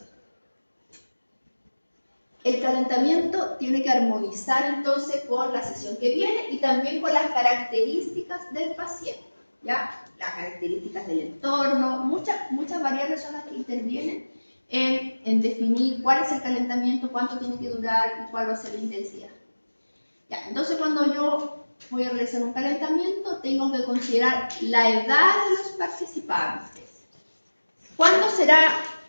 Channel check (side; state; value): both; inverted; correlation -1.00